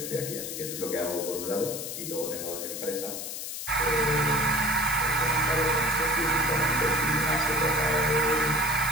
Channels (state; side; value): noise; left; hiss, 6 dB below the sound